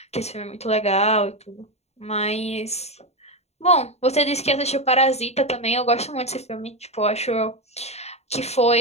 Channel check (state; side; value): late; right; 0.31 ms